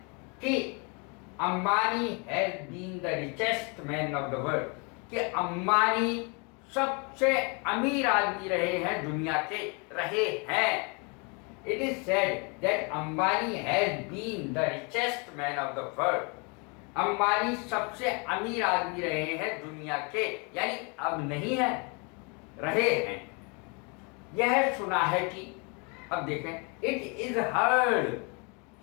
कि Ambani has been the richest man of the world, कि अंबानी सबसे अमीर आदमी रहे हैं, दुनिया के रहे हैं। It is said that Ambani has been the richest man of the world. Ambani सबसे अमीर आदमी रहे हैं दुनिया के, यानी अब नहीं है, रहे हैं। यह सुना है कि, अब देखें, इट इज हर्ड,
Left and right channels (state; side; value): quieter; right; 32.9 dB